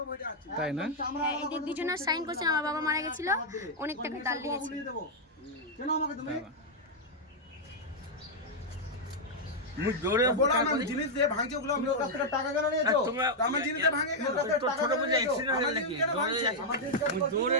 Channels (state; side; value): normal; both; correlation -0.03